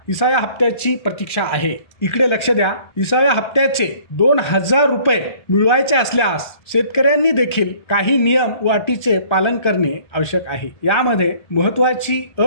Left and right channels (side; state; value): right; late; 1.4 ms